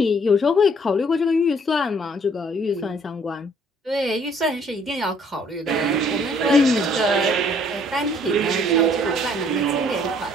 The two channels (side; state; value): both; normal; correlation 0.61